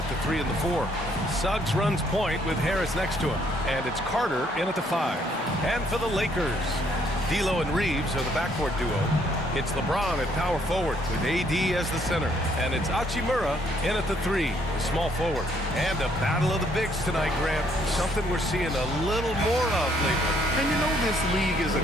at the 3 and the 4. Suggs runs point with Harris next to him, and it's Carter in at the 5. And for the Lakers, D'Lo and Reeves are the backcourt duo. It's LeBron at power forward with AD as the center, and it's Hachimura in at the 3, the small forward. And a battle of the bigs tonight, Grant. Something we're seeing a little more of lately. And you know this league is a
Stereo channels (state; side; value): normal; both; correlation 0.67